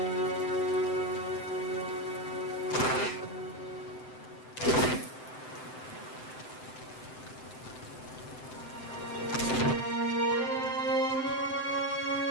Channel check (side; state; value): right; late; 7.8 ms